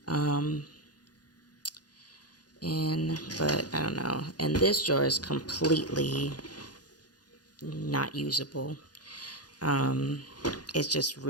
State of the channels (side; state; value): right; late; 0.69 ms